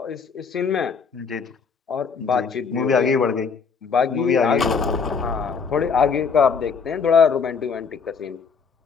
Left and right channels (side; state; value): right; quieter; 5.7 dB